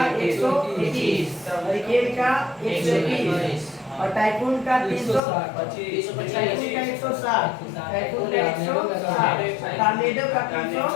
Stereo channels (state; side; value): drops out; right; at 5.2 s